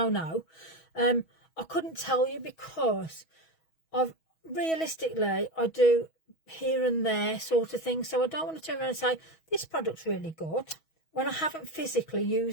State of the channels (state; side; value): late; right; 6.2 ms